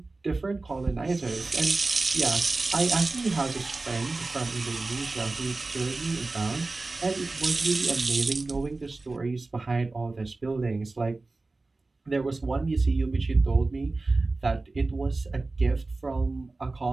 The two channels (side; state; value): left; quieter; 3.4 dB